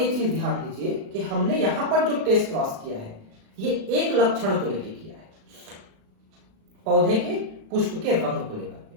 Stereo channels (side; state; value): left; late; 36 ms